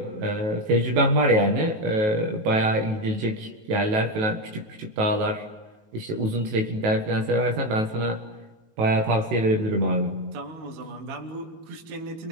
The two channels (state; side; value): late; left; 19 ms